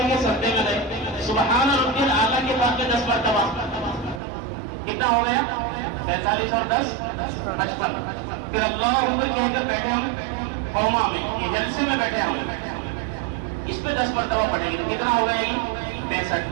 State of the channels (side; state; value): left; drops out; at 4.2 s